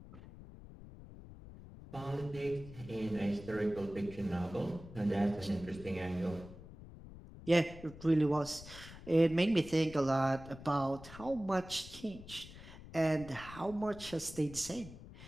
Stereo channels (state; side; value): noise; left; rumble, 16 dB below the sound